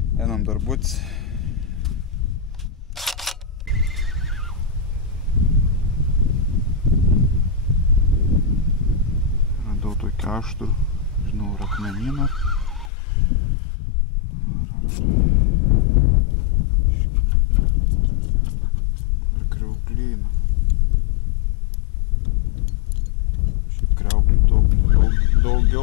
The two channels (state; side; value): drops out; right; at 12.9 s